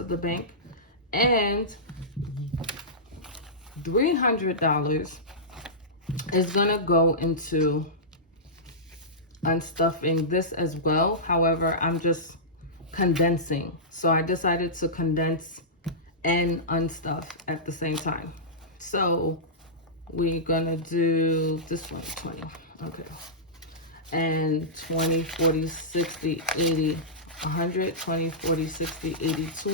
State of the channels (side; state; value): both; normal; correlation -0.15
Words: the bank, and $300 is gonna go into unstuffing this as well. However, I'm just condensing, so I decided to condense and unstuff at the same time. So we're gonna do this one, 20. Okay. And 20, 40, 60, 80, 100, 20, 40, 60, 80,